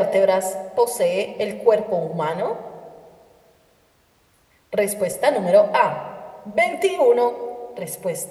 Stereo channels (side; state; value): both; identical; correlation 1.00